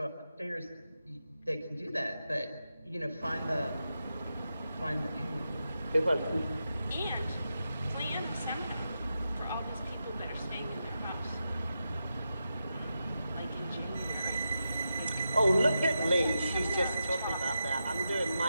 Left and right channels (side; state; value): both; inverted; correlation -0.88